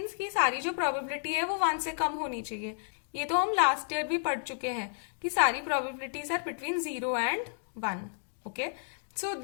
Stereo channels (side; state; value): right; silent; digital silence